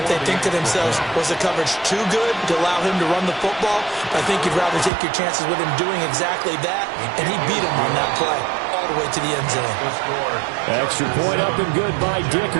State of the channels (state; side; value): drops out; left; at 4.9 s